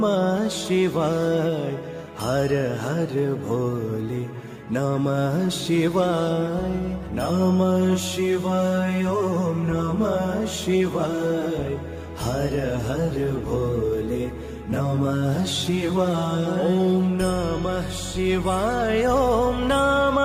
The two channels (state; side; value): identical; both; correlation 1.00